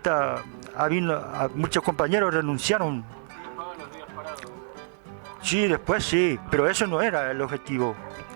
muchos compañeros renunciaron. pagan los días parados. Sí, después sí, pero eso no era el objetivo.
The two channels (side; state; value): left; silent; 60 dB below the other